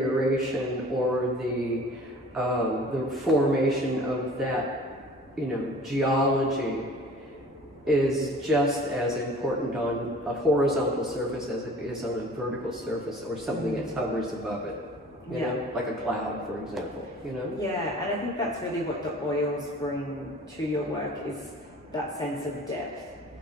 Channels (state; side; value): normal; both; correlation 0.46